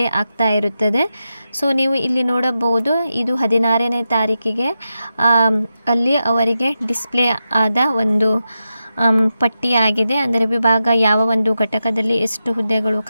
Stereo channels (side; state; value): both; inverted; correlation -0.89